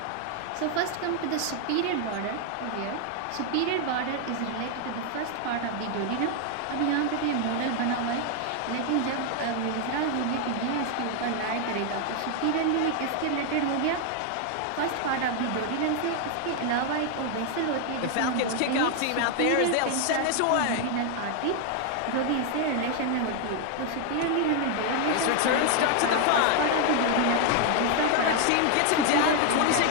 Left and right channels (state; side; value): different; both; correlation 0.00